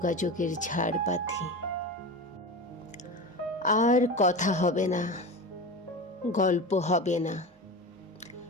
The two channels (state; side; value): normal; both; correlation 0.27